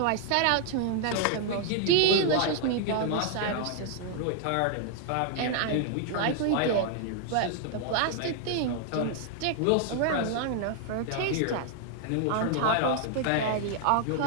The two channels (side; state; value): both; different; correlation 0.00